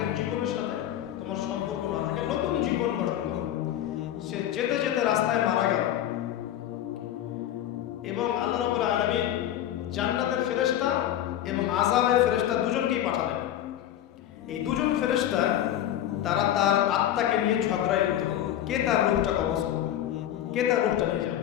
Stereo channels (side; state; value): right; quieter; 11.7 dB